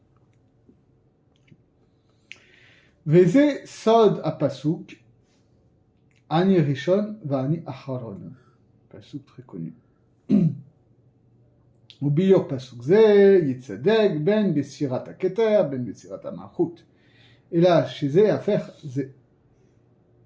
Veze sod apasuk, ani rishon vani acharon. Pasuk très connu. וביור פסוק זה יצדק בין בסירת הכתר בין בסירת המלכות, אלא שזה יהפך זה.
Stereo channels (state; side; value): identical; both; correlation 1.00